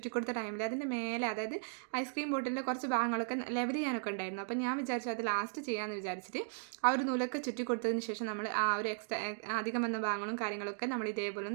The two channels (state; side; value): silent; left; digital silence